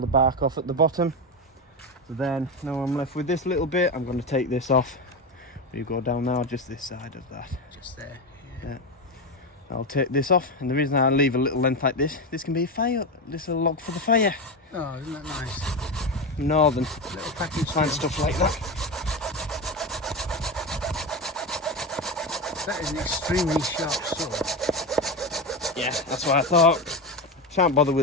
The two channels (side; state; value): both; normal; correlation 0.17